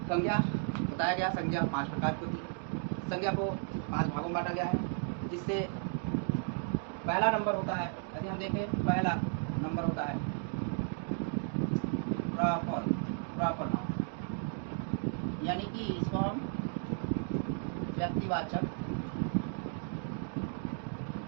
संज्ञा बताया गया, संज्ञा 5 प्रकार की होती है। संज्ञा को 5 भागों में बांटा गया है, जिससे पहला नंबर होता है, यदि हम देखें पहला नंबर होता है प्रॉपर नाउन, यानी कि इसको हम व्यक्तिवाचक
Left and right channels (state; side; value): silent; left; 55 dB below the other